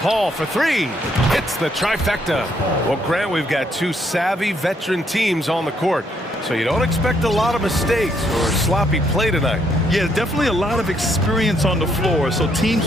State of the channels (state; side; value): normal; both; correlation 0.72